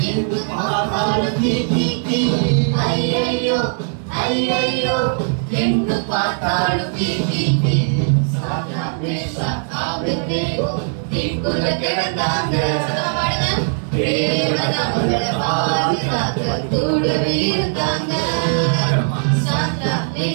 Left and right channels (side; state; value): left; silent; 65 dB below the other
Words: எங்கு பார்த்தாலும் தீ தீ தீ. ஐயையோ ஐயையோ எங்கு பார்த்தாலும் தீ தீ தீ. சாத்ராக் மேஷாக் ஆபேத்நேகோ தீக்குள்ள கிடந்தாங்க. தேவன் அவர்களை பாதுகாக்க கூடவே இருந்தாங்க. சாத்ராக்